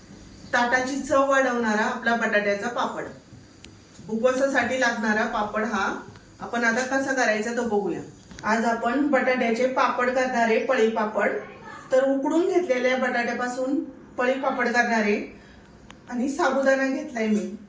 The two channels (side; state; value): both; identical; correlation 1.00